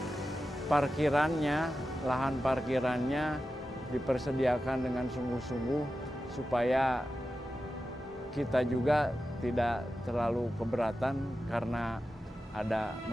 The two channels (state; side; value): normal; both; correlation 0.92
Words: parkirannya, lahan parkirannya dipersediakan dengan sungguh-sungguh supaya kita juga tidak terlalu keberatan karena ada